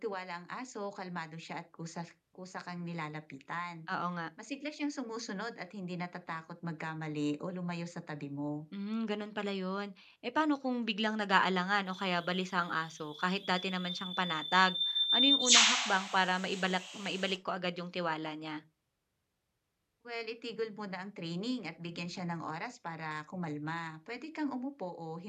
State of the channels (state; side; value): identical; both; correlation 1.00